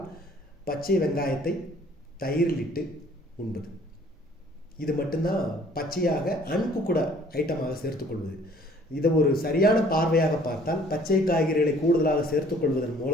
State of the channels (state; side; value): normal; both; correlation 0.56